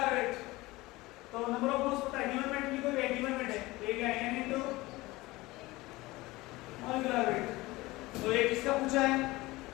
weight. तो नंबर ऑफ मोल्स पता है. Given weight लिखो ये given weight है. तो ये क्या है? N into molecular weight. तो ये किसका पूछा है?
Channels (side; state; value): right; quieter; 20.3 dB